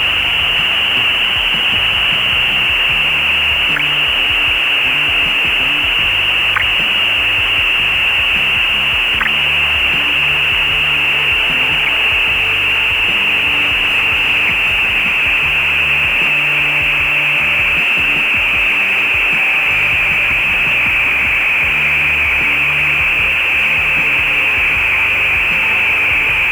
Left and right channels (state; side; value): noise; right; hiss, 23 dB below the sound